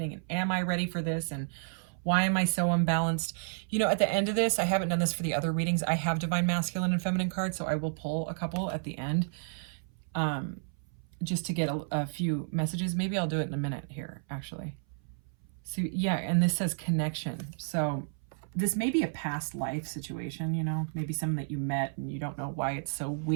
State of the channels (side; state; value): left; silent; 57 dB below the other